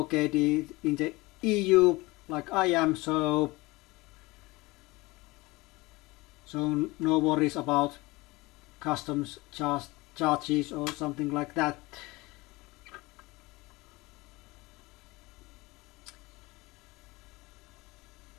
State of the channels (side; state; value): right; quieter; 21.7 dB